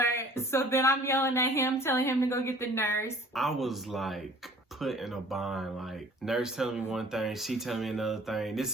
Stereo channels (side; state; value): both; normal; correlation 0.50